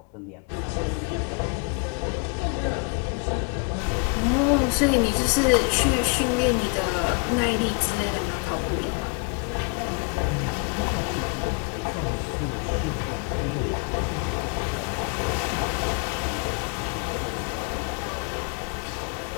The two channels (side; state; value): right; quieter; 34.9 dB